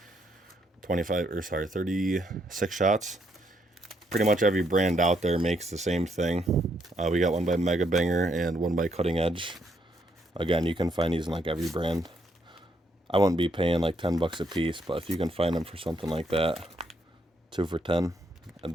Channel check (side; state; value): both; normal; correlation 0.74